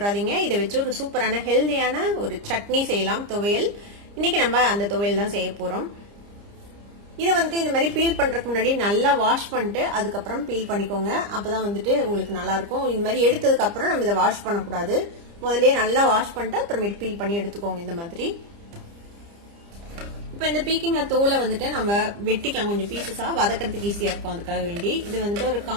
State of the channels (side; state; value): left; late; 30 ms